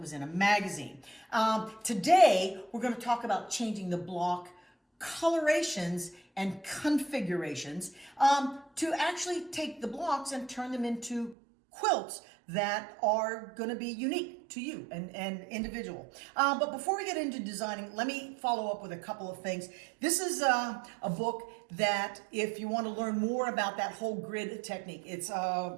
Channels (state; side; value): drops out; left; at 11.4 s